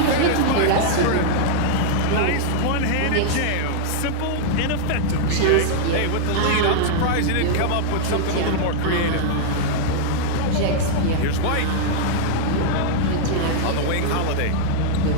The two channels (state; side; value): different; both; correlation -0.01